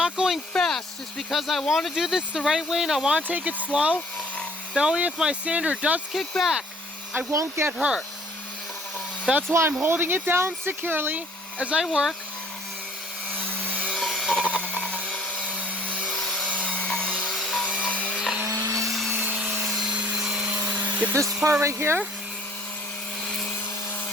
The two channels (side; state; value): both; normal; correlation 0.55